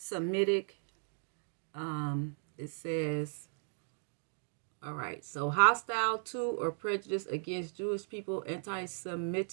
it says, all right, so hostile to or prejudice against Jewish people,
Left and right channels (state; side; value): silent; left; digital silence